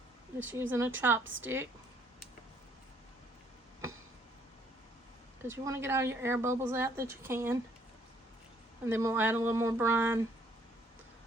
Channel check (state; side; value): normal; both; correlation 0.65